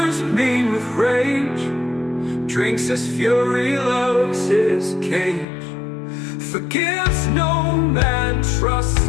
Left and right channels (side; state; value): right; drops out; at 5.5 s